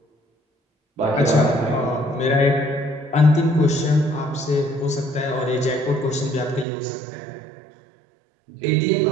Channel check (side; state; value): left; drops out; at 6.7 s